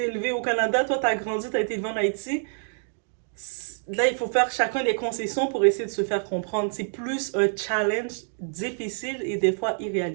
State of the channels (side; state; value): left; silent; digital silence